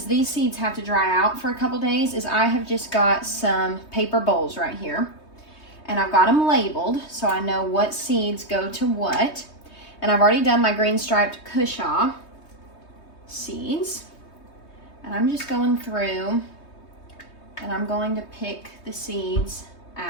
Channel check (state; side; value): late; right; 3.2 ms